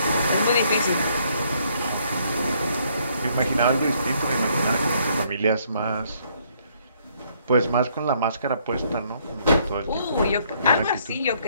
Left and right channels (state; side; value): inverted; both; correlation -0.68